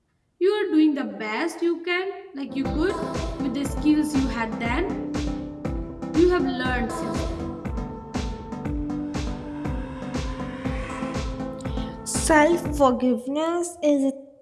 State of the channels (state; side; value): identical; both; correlation 1.00